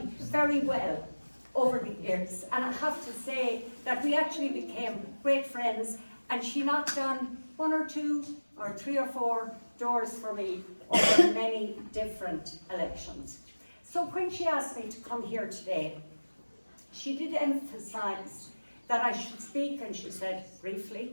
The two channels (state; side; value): inverted; both; correlation -1.00